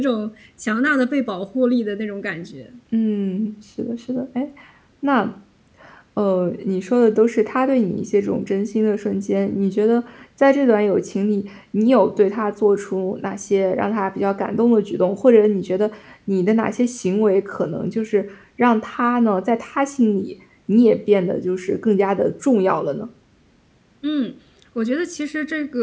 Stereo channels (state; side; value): identical; both; correlation 1.00